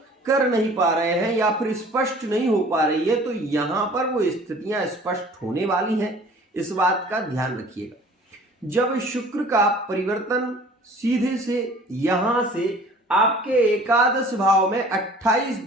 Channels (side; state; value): both; normal; correlation 0.49